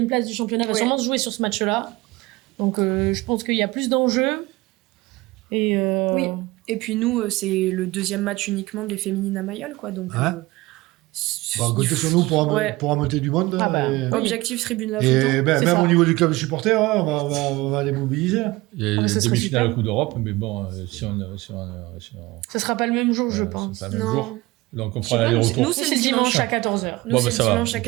place du championnat va sûrement se jouer sur ce match-là. Donc, je pense qu'il y a plus d'enjeux. Oui. Et puis nous, c'est le deuxième match uniquement des féminines à Mayol, quoi. Donc, comptez sur nous pour amener du monde. Objectif tribune la Et même au niveau du club de supporters, on va les mobiliser. Il y a des demi-finales à Coupe d'Europe, mais bon, si on ce sera pas le même jour, je pense. Pas le même jour. Donc on prend l'aller-retour. Nous, c'est le dimanche à 14h. Nous, c'est le dimanche à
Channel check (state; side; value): quieter; left; 20.7 dB